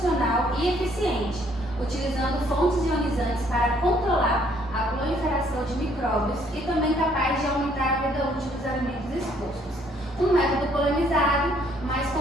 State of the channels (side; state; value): both; normal; correlation 0.65